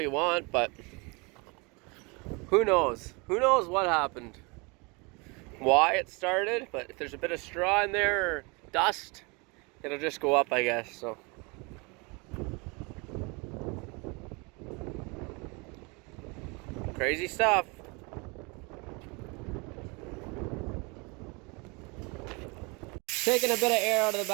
want, but who knows? Who knows what happened? Why it started, but if there's a bit of straw in there or dust, it'll just go up, I guess, so. Crazy stuff. Taking a bit of air out of the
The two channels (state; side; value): quieter; left; 29.1 dB